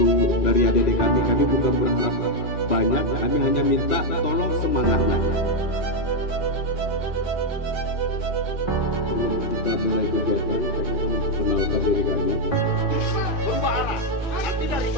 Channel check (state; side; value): late; right; 2.5 ms